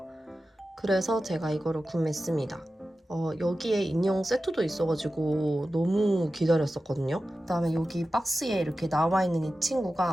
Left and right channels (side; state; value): both; normal; correlation 0.94